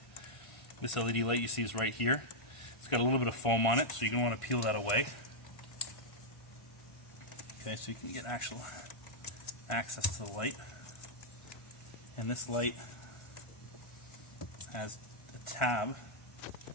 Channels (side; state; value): right; late; 1.5 ms